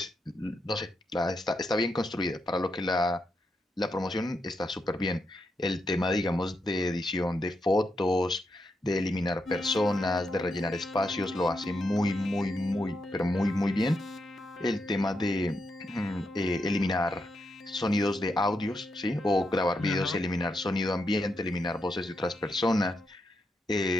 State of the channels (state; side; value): normal; both; correlation 0.83